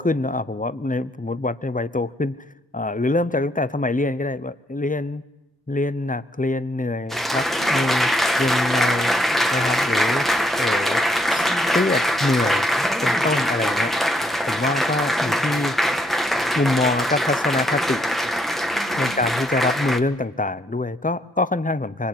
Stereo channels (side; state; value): both; normal; correlation 0.71